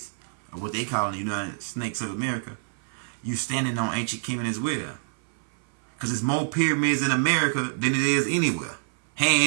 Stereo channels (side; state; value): left; silent; 60 dB below the other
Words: or what they call the United Snakes of America, you standing on ancient Kemet as well. Because there's more pyramids in America than it is anywhere,